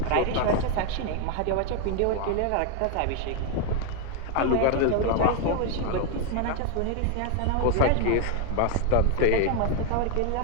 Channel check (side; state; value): both; different; correlation 0.01